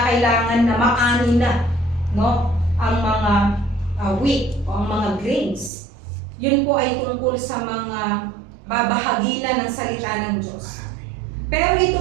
na maani na, no, ang mga wheat o ang mga grains. Yun po ay tungkol sa mga babahaginan ng salita ng Diyos. Pero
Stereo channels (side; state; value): left; drops out; at 5.7 s